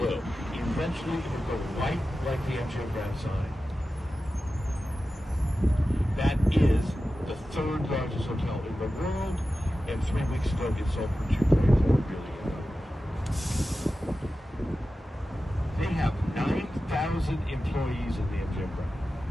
Eventually it will go white like the MGM Grand sign. That is the 3rd largest hotel in the world, and 3 weeks ago it sold for $2.4 billion. They have 9,000 employees in the MGM Grand.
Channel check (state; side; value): normal; both; correlation 0.93